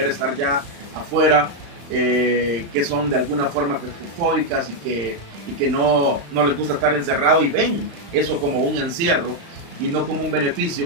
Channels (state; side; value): late; left; 35 ms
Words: estar ya afuera, que son de alguna forma claustrofóbicas y que no les gusta estar encerrado, y ven eso como un encierro y no como un